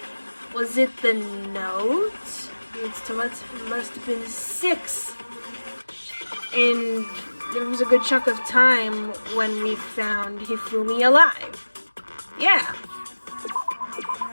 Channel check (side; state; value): both; inverted; correlation -1.00